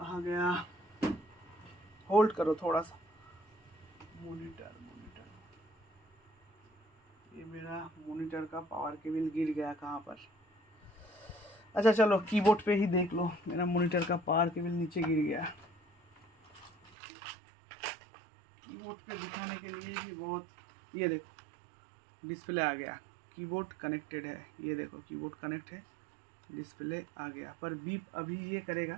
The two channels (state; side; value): drops out; left; at 16.9 s